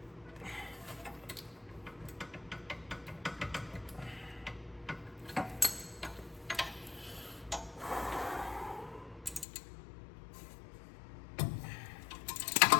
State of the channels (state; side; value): drops out; right; at 9.5 s